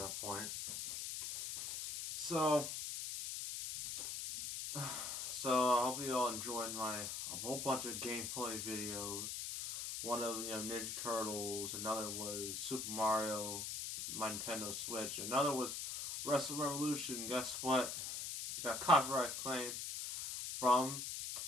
point. So I hope you all enjoyed a whole bunch of gameplay videos. One of Ninja Turtles, another was Super Mario, my Nintendo Switch, another was Wrestle Revolution. Guess what? I got copyright claims from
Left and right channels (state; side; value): noise; left; hiss, 4 dB below the sound